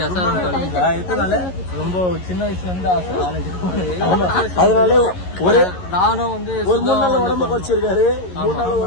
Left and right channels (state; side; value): late; right; 11 ms